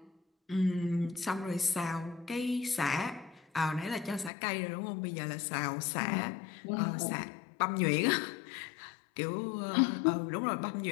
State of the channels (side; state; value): right; drops out; at 4.3 s